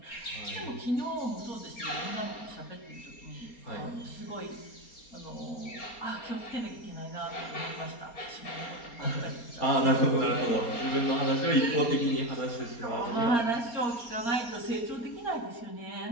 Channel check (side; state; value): right; late; 4.3 ms